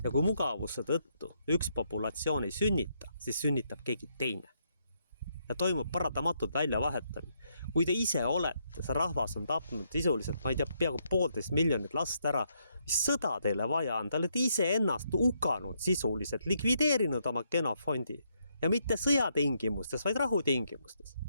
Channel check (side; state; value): both; inverted; correlation -0.76